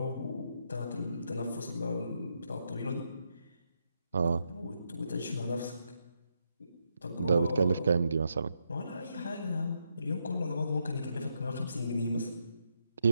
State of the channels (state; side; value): inverted; both; correlation -0.81